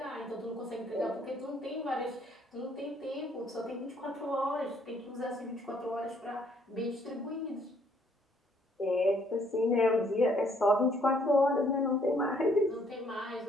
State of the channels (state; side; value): normal; both; correlation 0.66